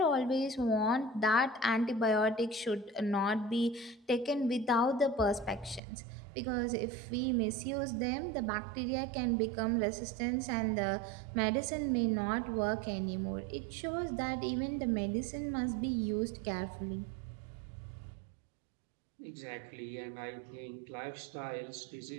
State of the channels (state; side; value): drops out; left; at 5.8 s